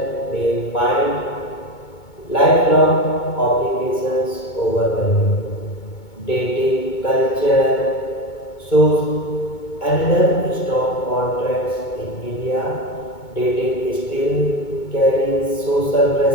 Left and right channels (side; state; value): right; late; 2.2 ms